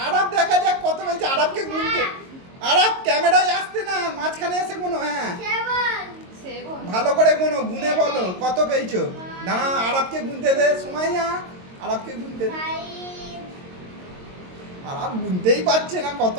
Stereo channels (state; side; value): late; left; 22 ms